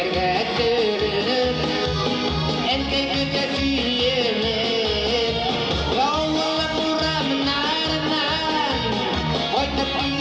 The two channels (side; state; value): both; identical; correlation 1.00